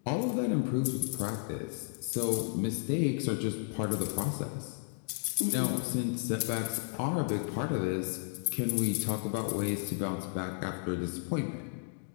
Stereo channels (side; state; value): right; silent; digital silence